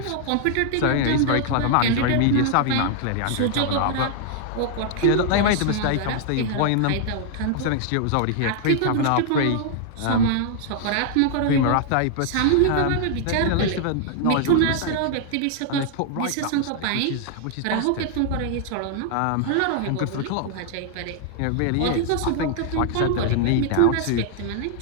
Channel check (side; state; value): both; different; correlation 0.00